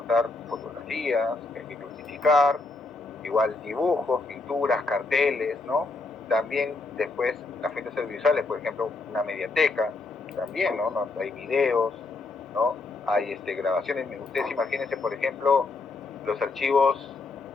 fotografías que hay que clasificar, igual dibujos, pinturas, carteles, ¿no? También después las fuentes audiovisuales, por ejemplo, una mediateca, también, ¿no? Hay videos, ¿no? Hay grabaciones. Ustedes imagínense, por ejemplo, los archivos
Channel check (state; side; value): quieter; right; 3.6 dB